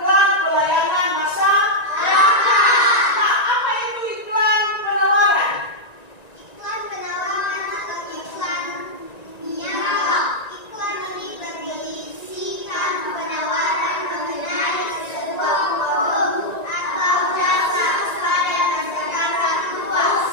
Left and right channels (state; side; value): late; right; 1.9 ms